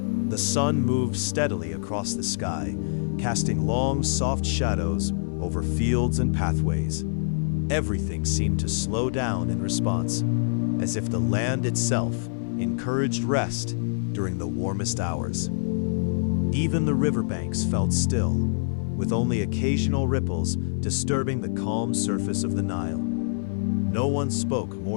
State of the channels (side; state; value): right; silent; 61 dB below the other